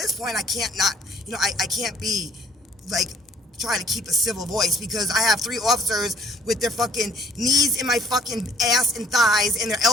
point, I can't not, I can't be, like, try to keep a civil voice, because I have 3 officers with their fucking knees in my fucking ass and thighs and their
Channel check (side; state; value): both; normal; correlation 0.59